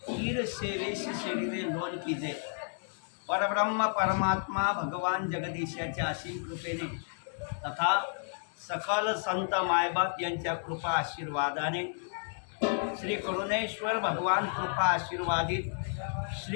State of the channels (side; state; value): right; silent; digital silence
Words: कीर सेवेशी शरीरे लोन कीजे। परब्रह्म परमात्मा भगवान जगदीशाच्या असीम कृपेने तथा सकल संत मायबाप यांच्या कृपा आशीर्वादाने श्री करुणेश्वर भगवान कृपा आशीर्वादित